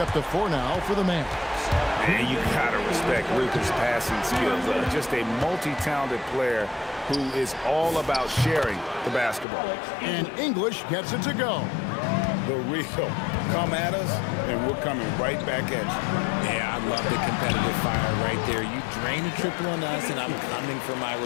to 4 now for the Mavs. Man, you gotta respect Luka's passing skills. Just a multi-talented player who is all about sharing the basketball. And English gets it to go. The real come at us, and we're coming right back at you. Yeah, I love the competitive fire right there. You drain a triple on us, and I'm coming for my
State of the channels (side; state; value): right; drops out; at 9.5 s